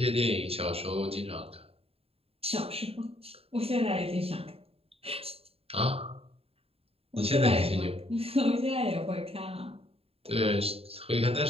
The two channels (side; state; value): left; late; 0.28 ms